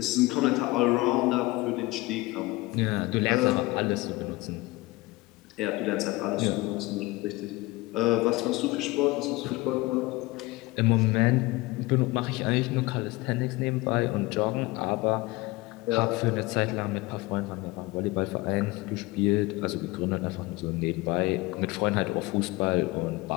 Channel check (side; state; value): right; quieter; 21.1 dB